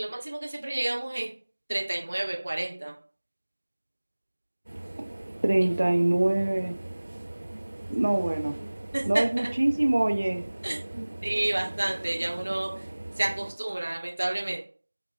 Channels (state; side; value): inverted; both; correlation -1.00